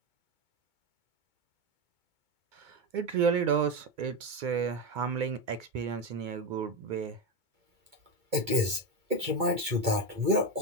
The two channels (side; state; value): left; late; 2.2 ms